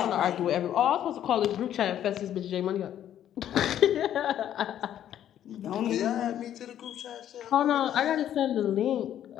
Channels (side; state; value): right; quieter; 10.9 dB